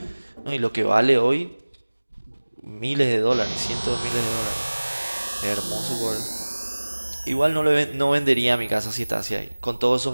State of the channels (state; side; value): inverted; both; correlation -1.00